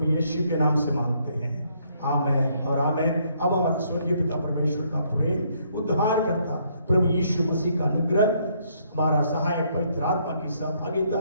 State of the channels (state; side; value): inverted; both; correlation -0.69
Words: यीशु के नाम से मांगते हैं, आमेन और आमेन। अब हमारा स्वर्गीय पिता परमेश्वर का प्रेम, उद्धार करता प्रभु यीशु मसीह का अनुग्रह, हमारा सहायक पवित्र आत्मा की